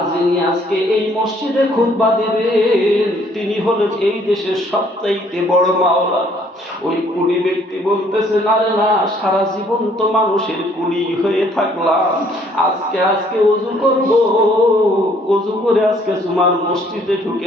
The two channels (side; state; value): both; normal; correlation 0.62